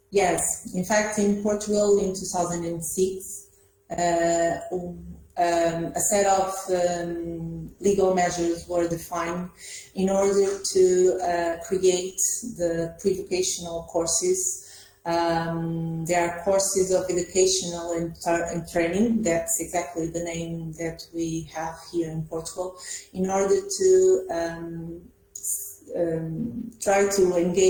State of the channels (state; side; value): identical; both; correlation 1.00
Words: Yes, in fact, in Portugal in 2006, a set of legal measures were defined in order to create the pre-vocational courses. There are courses of educational and training, that's exactly the name that we have here in Portugal, in order to try to